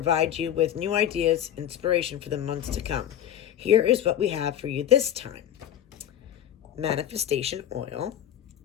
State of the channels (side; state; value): right; quieter; 10.9 dB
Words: you with new ideas, inspiration for the months to come. Here is what we have for you this time. Manifestation oil,